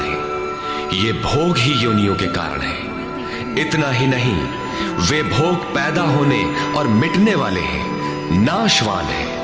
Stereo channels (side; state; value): both; identical; correlation 1.00